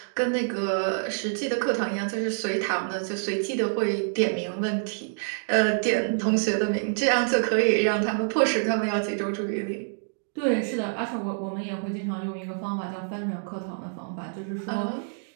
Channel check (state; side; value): silent; left; digital silence